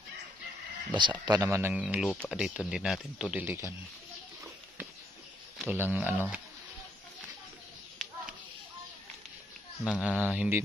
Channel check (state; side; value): normal; both; correlation 0.74